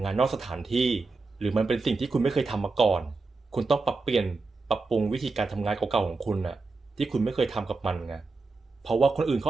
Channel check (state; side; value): quieter; left; 3.8 dB